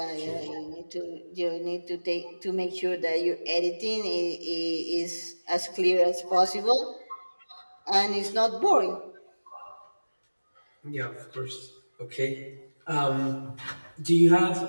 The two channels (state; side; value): inverted; both; correlation -1.00